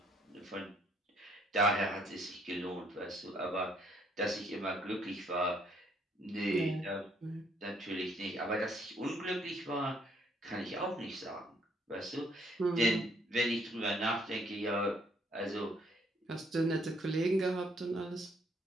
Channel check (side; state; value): both; normal; correlation 0.66